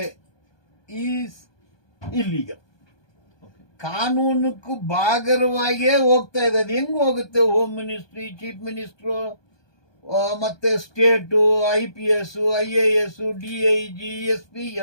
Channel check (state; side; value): late; right; 1.2 ms